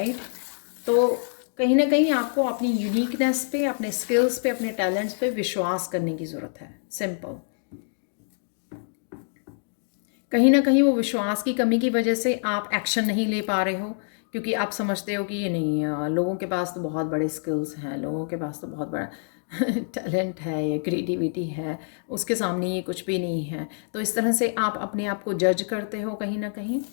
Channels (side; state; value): right; silent; digital silence